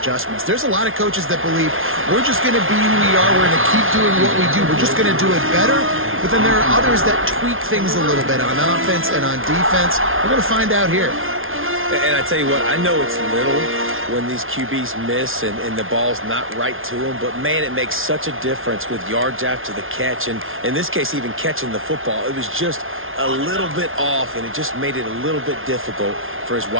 There's a lot of coaches that believe we're just going to be who we are. We're going to keep doing what we do. We're just going to do it better. But then there are others that tweak things a little bit on offense and on defense. We're going to find out here. And I tell you what, I know it's little when these QBs miss and the ball's not right to them, but man, it makes such a difference with yards after the catch, and in this case, even catching the football. It was just a little bit off, and it just made it a little bit difficult for his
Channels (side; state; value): left; late; 0.60 ms